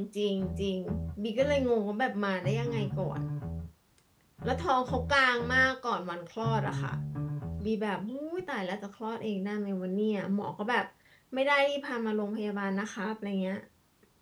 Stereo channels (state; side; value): identical; both; correlation 1.00